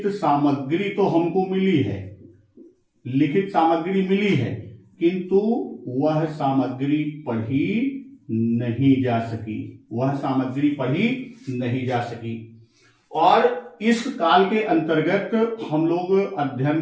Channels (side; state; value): both; identical; correlation 1.00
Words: सामग्री तो हमको मिली है, लिखित सामग्री मिली है, किंतु वह सामग्री पढ़ी नहीं जा सकी, वह सामग्री पढ़ी नहीं जा सकी। और इस काल के अंतर्गत हम लोग